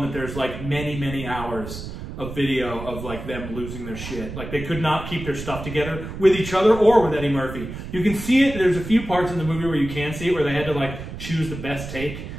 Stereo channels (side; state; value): right; noise; rumble, 9 dB below the sound